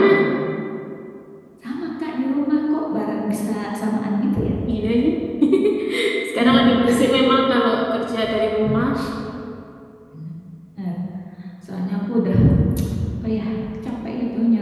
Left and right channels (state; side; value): identical; both; correlation 1.00